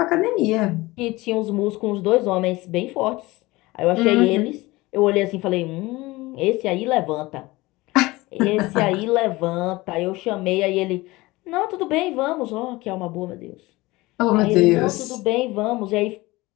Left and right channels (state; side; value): quieter; right; 20.7 dB